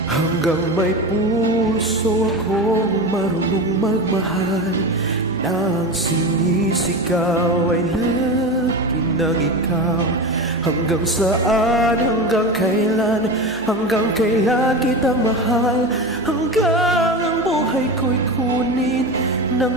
Hanggang may puso akong marunong magmahal, na ang sinisigaw ay lagi ng ikaw. Hanggang saan, hanggang kailan kitang mahal, hanggang ang buhay ko'y kunin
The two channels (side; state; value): both; normal; correlation 0.24